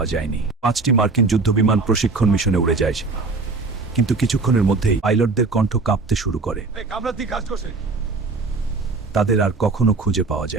যায়নি। 5টি মার্কিন যুদ্ধবিমান প্রশিক্ষণ মিশনে উড়ে যায়, কিন্তু কিছুক্ষণের মধ্যেই পাইলটদের কণ্ঠ কাঁপতে শুরু করে। তাদের আর কখনো খুঁজে পাওয়া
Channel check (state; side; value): quieter; left; 3.9 dB